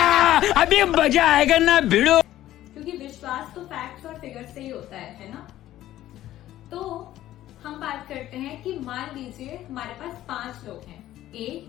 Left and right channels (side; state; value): right; quieter; 13.8 dB